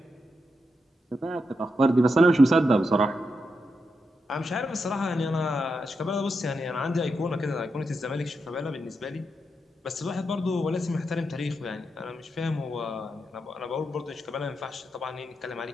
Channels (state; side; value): normal; both; correlation 0.85